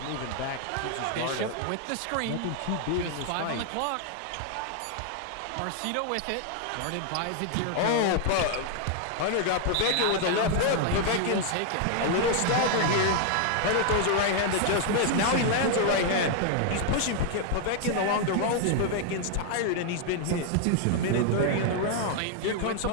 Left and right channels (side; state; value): both; different; correlation 0.00